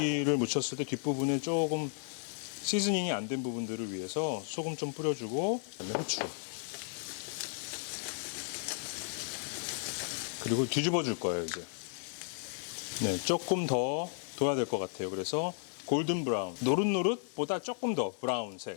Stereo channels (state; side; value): silent; right; digital silence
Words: 묻혔을 때 뒷부분에 조금 시즈닝이 안 된 부분들을 위해서 소금 좀 뿌려주고 그다음에 후추 그리고 뒤집어 줄 거예요 이제. 네, 조금 더 둬야 될 것 같아요. 그래서 골든 브라운, 노릇노릇보다 조금 더